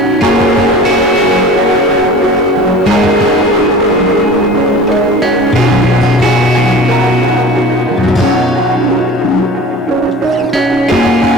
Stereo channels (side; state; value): both; normal; correlation 0.41